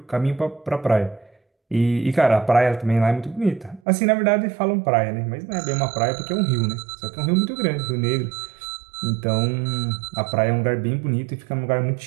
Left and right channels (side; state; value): left; drops out; at 3.8 s